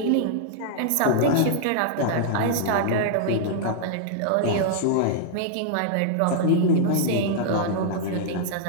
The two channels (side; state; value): both; different; correlation -0.01